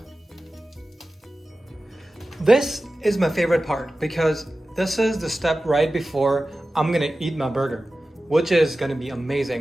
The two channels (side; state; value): both; normal; correlation 0.95